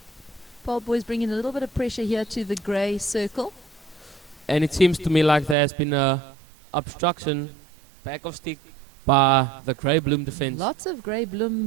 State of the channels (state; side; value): drops out; left; at 5.6 s